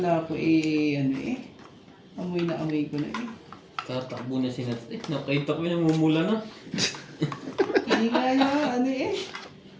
ko amoy na amoy ko na eh. Tatakbo na si Nat. Nakita ko yung namumula na. Hindi kaya,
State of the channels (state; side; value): identical; both; correlation 1.00